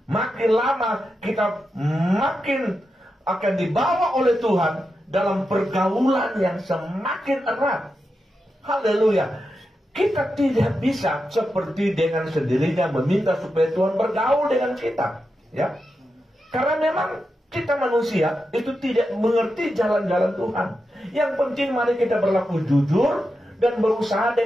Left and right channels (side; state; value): both; normal; correlation 0.88